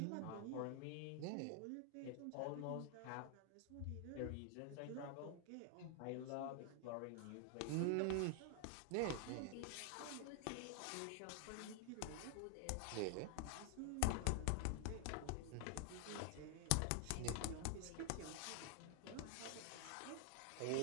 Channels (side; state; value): both; different; correlation 0.00